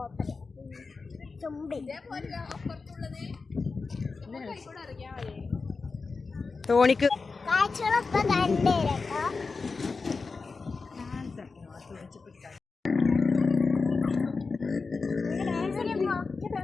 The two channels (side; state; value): right; quieter; 4.4 dB